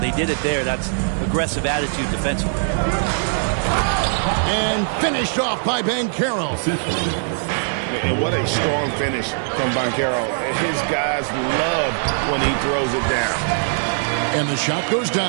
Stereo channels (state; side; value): silent; left; digital silence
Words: did it there. That's aggressive attitude defensively. And finished off by Banchero. And what a strong finish from Banchero. His guys love when he throws it down. And the shot goes